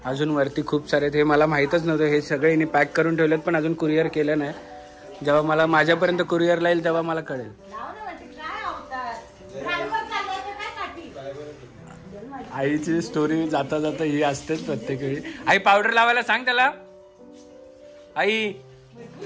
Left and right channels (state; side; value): identical; both; correlation 1.00